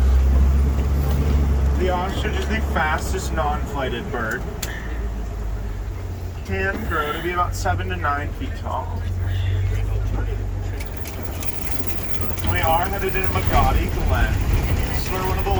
The ostrich is the fastest non-flighted bird. Can grow to be about 7 to 9 feet tall. We are headed into Magadi Glen. This is where one of the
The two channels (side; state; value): both; identical; correlation 1.00